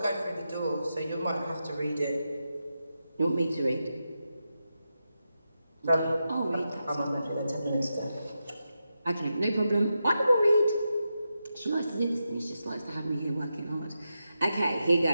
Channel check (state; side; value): inverted; both; correlation -0.88